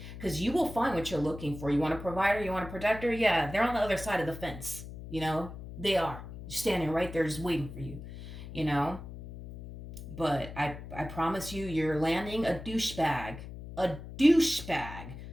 Because you will find what you're looking for. You want a provider, you want a protector? Yeah, they're on the other side of the fence. They are standing right there just waiting for you, But I promise you, you're landing a douchebag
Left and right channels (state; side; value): noise; left; hum, 12 dB below the sound